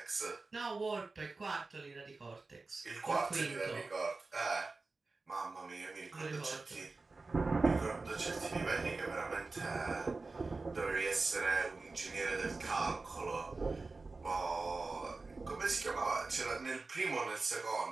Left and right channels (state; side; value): quieter; left; 3.7 dB